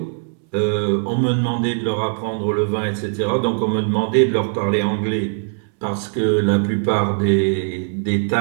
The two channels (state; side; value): silent; left; 66 dB below the other